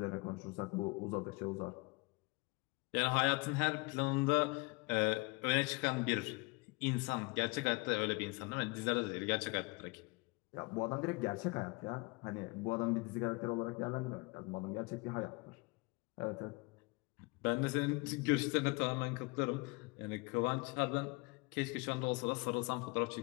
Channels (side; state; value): right; quieter; 27.1 dB